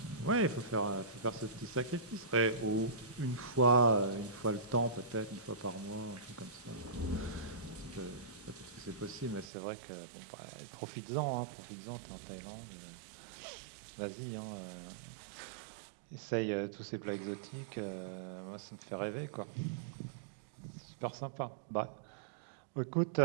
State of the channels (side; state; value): left; drops out; at 9.5 s